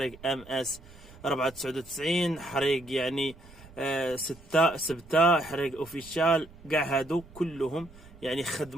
ام اس 499، حريق يعني ستة سبتة، حريق اوفيشال. كاع هادو كلهم يعني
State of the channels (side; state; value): right; noise; rumble, 21 dB below the sound